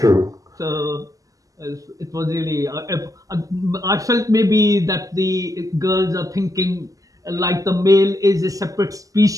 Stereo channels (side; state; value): left; late; 0.17 ms